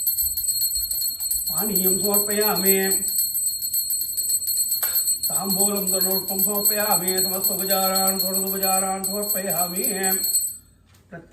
पानीयं समर्पयामि ताम्बूलं तनोष्टं समर्पयामि समस्तोपचारान् षोडशोपचारान् समर्पयामि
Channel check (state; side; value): identical; both; correlation 1.00